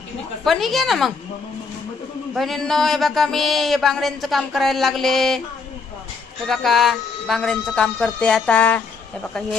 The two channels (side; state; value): right; quieter; 4.7 dB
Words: पण घे ना मग. बहिणींनो हे बघा मी हे बांगड्यांचं काम करायला लागले. हे बघा बांगड्यांचं काम करते आता. हे बघा